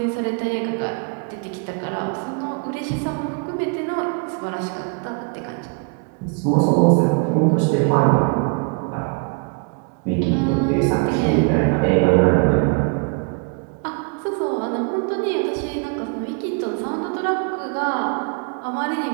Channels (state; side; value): quieter; left; 35.6 dB